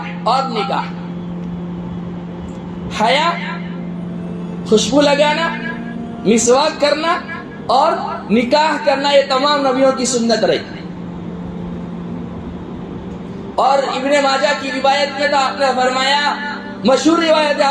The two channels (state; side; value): identical; both; correlation 1.00